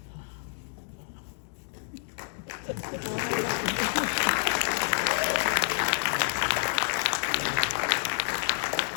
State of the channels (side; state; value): right; silent; digital silence